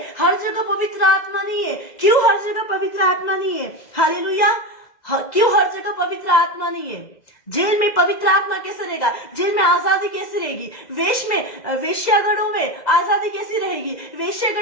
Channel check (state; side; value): late; right; 2.0 ms